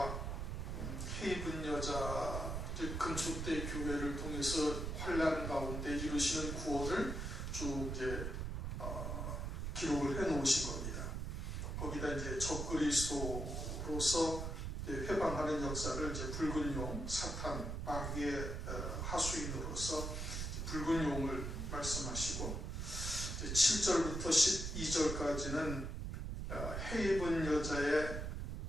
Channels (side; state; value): right; noise; rumble, 3 dB below the sound